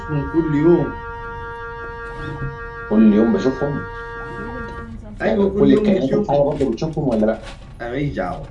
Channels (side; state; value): both; identical; correlation 1.00